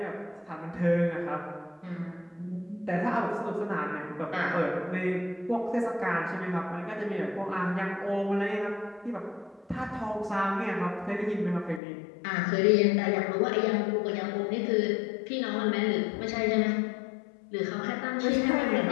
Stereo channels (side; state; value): right; drops out; at 11.8 s